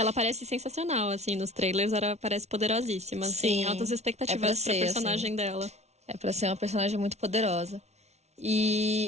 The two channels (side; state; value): left; late; 0.32 ms